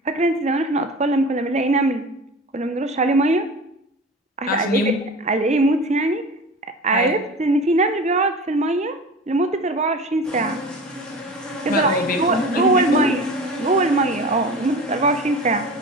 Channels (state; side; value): normal; both; correlation 0.35